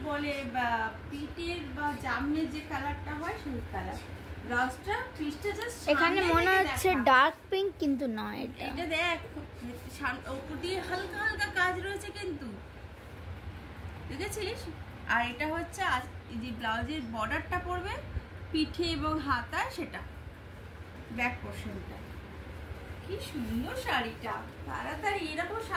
বলে, বা পিটের বা জামনের যে কালারটা হয় সেই কালার। ব্লাউজটা পিসটা জাস্ট এখানে মনে হচ্ছে ডার্ক পিঙ্ক, কিন্তু নয়। এটা দেখ উপর দিয়ে হালকা হালকা কাজ রয়েছে কিন্তু, দেখেছিস? আর এটা হচ্ছে যে ব্লাউজের বর্ডারটা পড়বে পিঠে এবং হাতায়, সেটা ব্যাক পোর্শনটা। কি সুন্দর শাড়িটা, তাড়াতাড়ি এরকম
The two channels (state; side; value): identical; both; correlation 1.00